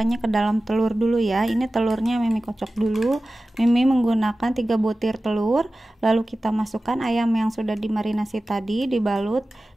ke dalam telur dulu ya. Ini telurnya Mimi kocok dulu. Mimi menggunakan 3 butir telur, lalu kita masukkan ayam yang sudah dimarinasi tadi, dibalut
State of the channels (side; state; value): both; normal; correlation 0.96